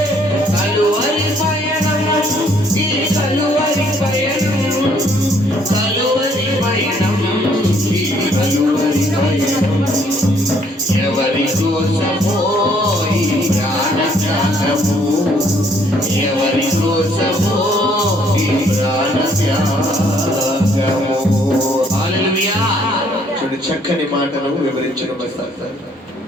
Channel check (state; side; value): normal; both; correlation 0.65